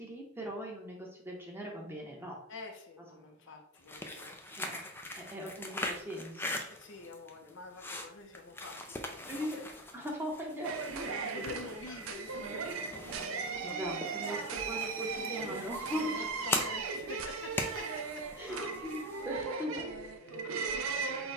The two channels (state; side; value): normal; both; correlation 0.13